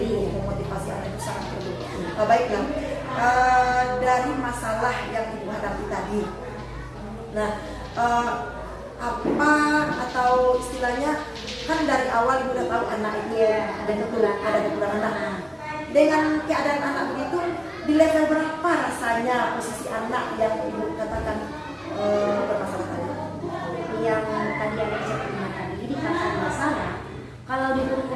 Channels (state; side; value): identical; both; correlation 1.00